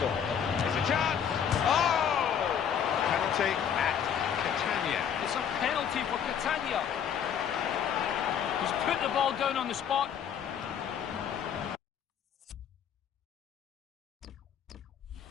It's a chance. Oh! Penalty at Catania. It's a penalty for Catania. He's put the ball down on the spot.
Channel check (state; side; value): quieter; right; 8.4 dB